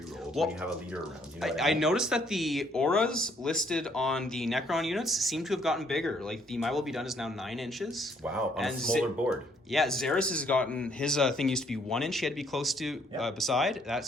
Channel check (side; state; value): both; normal; correlation 0.66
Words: when you have a leader around. You know what I mean? noticed that the auras listed on the Necron units seem to have gotten bigger. Like the My Will Be Done is now 9 inches. Wow, on a And smaller board. Yeah, Xeris has gotten his thing used to be 1 inch. He had to be close to beside.